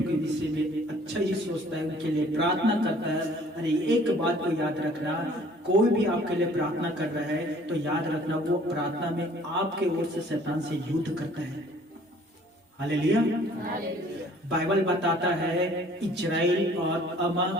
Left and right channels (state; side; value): normal; both; correlation 0.55